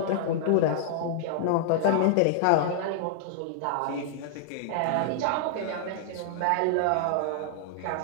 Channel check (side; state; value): both; different; correlation -0.01